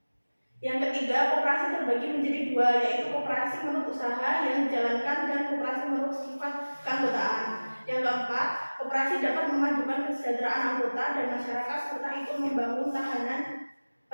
Yang ketiga, koperasi terbagi menjadi dua, yaitu koperasi menurut usaha yang dijalankan dan koperasi menurut sifat keanggotaan. Yang keempat, koperasi dapat memajukan kesejahteraan anggota dan masyarakat serta ikut membangun tahanan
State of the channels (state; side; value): inverted; both; correlation -1.00